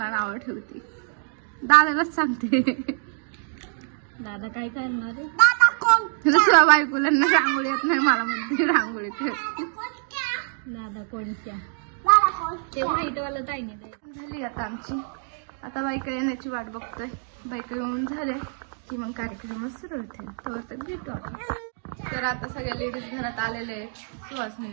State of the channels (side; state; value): left; silent; 57 dB below the other